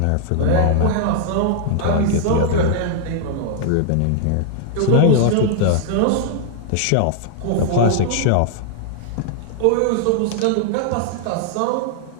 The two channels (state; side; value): different; both; correlation -0.01